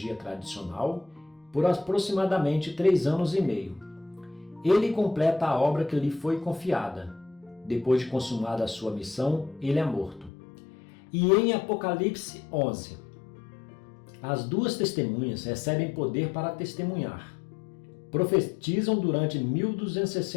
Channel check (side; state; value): right; drops out; at 10.3 s